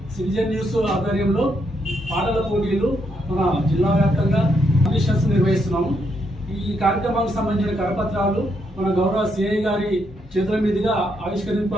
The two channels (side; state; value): both; normal; correlation 0.77